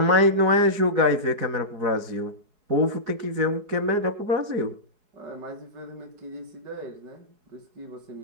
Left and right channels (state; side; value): late; left; 4.7 ms